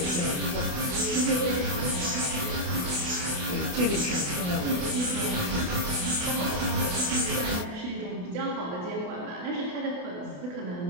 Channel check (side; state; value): left; late; 28 ms